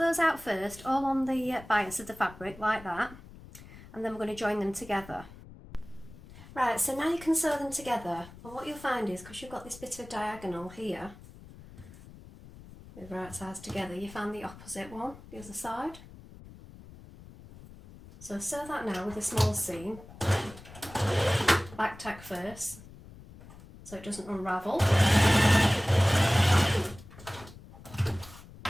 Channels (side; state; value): left; noise; rumble, 18 dB below the sound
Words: out first, all on the bias of the fabric like that, and then we're going to join them together. Right, so now you can sew them together, and what you'll find is, because you've got this bit of diagonal here, with right sides together, you find the opposite one, the other side. So sew that now with a small seam, back tack first, so it doesn't unravel.